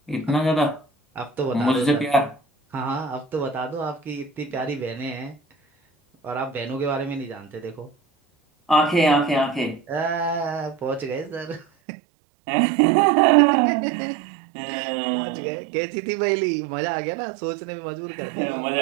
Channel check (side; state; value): left; drops out; at 11.7 s